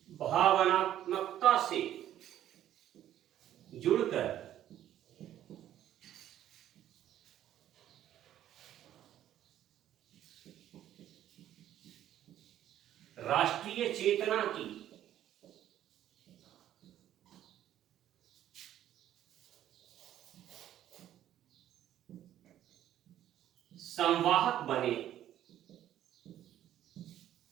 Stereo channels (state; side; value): quieter; left; 11.8 dB